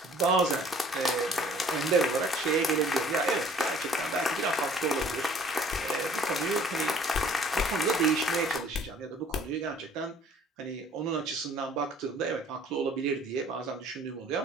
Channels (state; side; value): normal; both; correlation 0.54